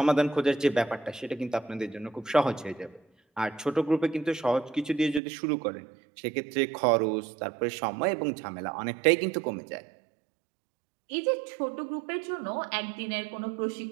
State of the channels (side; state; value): left; drops out; at 5.2 s